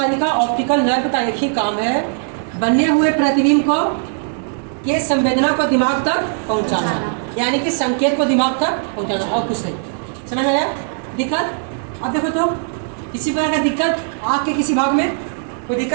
ऑप्टिकल नर्व का एक ही काम है, बने हुए प्रतिबिंब को के संवेदना को दिमाग तक पहुंचाना, यानी कि संकेत को दिमाग तक पहुंचाना और कुछ नहीं। समझ में आया? दिक्कत? अब देखो तो किसी प्रकार का दिक्कत आँख के किसी भाग में कोई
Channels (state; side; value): silent; left; 61 dB below the other